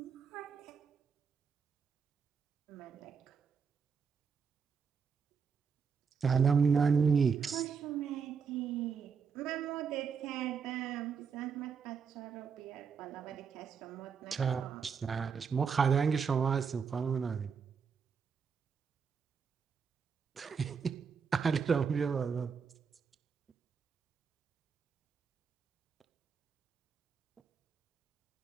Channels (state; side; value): quieter; left; 6.1 dB